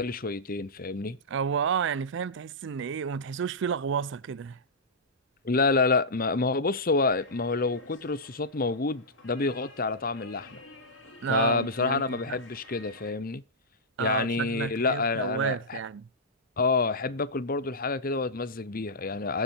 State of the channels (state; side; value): normal; both; correlation -0.11